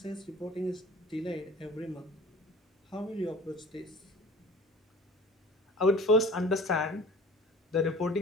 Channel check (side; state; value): both; normal; correlation 0.45